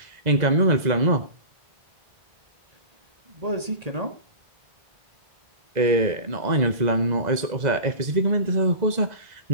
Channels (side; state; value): left; late; 2.0 ms